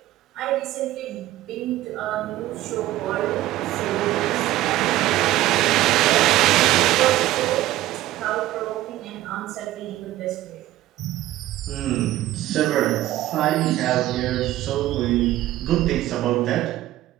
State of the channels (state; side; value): quieter; left; 15.1 dB